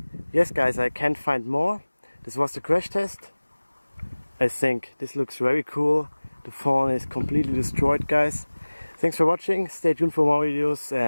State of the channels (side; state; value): both; inverted; correlation -1.00